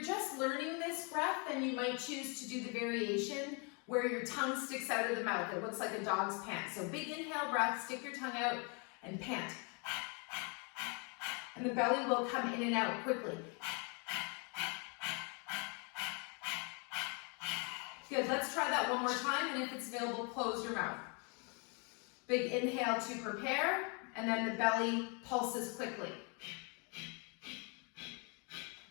just learning this breath, then you might choose to do the variation where your tongue sticks out of the mouth. It looks like a dog's pant. So big inhale breath, stick your tongue out and pant. And the belly will come in and out quickly. Good, let's try that one more time, and if it's available, close your mouth. Big inhale to prepare, and then the belly pulses quickly.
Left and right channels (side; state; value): right; quieter; 34.3 dB